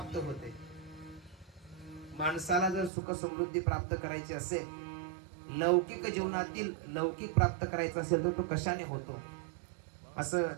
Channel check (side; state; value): left; drops out; at 2.9 s